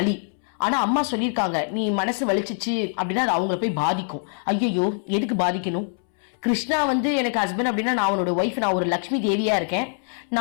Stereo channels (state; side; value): silent; right; 63 dB below the other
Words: ஆனா அம்மா சொல்லியிருக்காங்க, நீ மனசு வலிச்சிச்சு அப்படின்னா அது அவங்கள போய் பாதிக்கும். ஐயோ, எதுக்கு பாதிக்கணும்? கிருஷ்ணா எனக்கு ஹஸ்பண்ட் அப்படின்னா நான் அவனோட ஒய்ஃப், நான் ஒரு லக்ஷ்மி தேவியா இருக்கேன்.